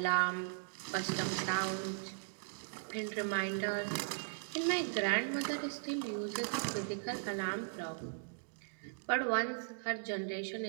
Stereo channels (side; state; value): left; silent; digital silence